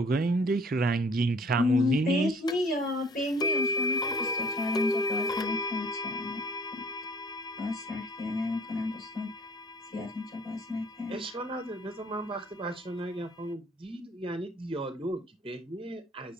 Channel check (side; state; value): both; normal; correlation 0.55